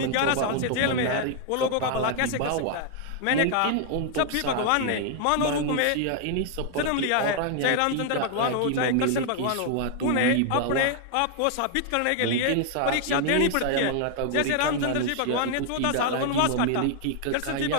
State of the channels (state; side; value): different; both; correlation 0.00